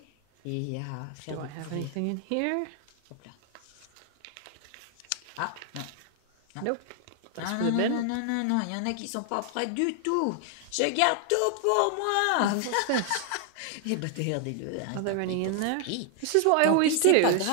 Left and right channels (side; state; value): both; different; correlation 0.00